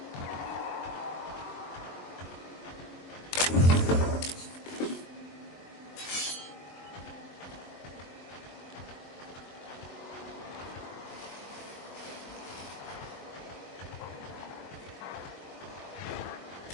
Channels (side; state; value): right; late; 22 ms